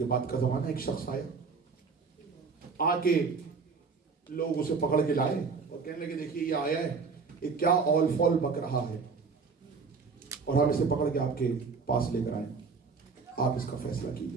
بعد کا زمانہ، ایک شخص آیا، آ کے لوگ اسے پکڑ کے لائے اور کہنے لگے دیکھیے یہ آیا ہے، یہ کیا اول فول بک رہا ہے اور ہم اسے پکڑ کے آپ کے پاس لے کر آئے، آپ اس کا فیصلہ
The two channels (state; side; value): quieter; left; 4.9 dB